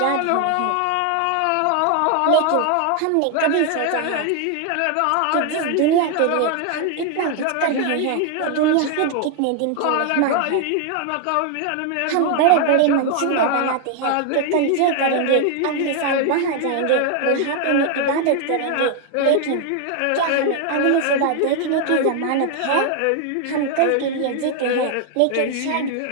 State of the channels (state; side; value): different; both; correlation 0.00